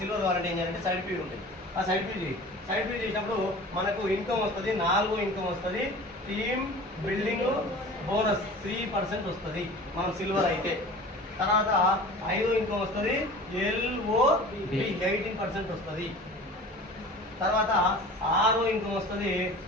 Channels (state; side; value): normal; both; correlation 0.40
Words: సిల్వర్ కావాలంటే ఏం చేయాలంటే సైడ్ పీవీలు ఉంటాయి. ఆ సైడ్ పీవీ చేసినప్పుడు మనకు ఇన్కమ్ వస్తుంది, 4 ఇన్కమ్ వస్తుంది. టీమ్ బిల్డింగ్ బోనస్ 3% వస్తుంది మనం సిల్వర్ అయితే. తర్వాత 5 ఇన్కమ్ వస్తుంది, LOB 18% వస్తుంది. తర్వాత 6 ఇన్కమ్ వస్తుంది,